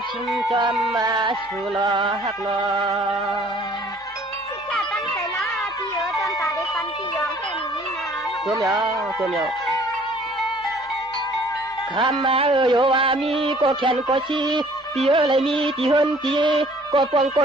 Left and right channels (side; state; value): both; normal; correlation 0.55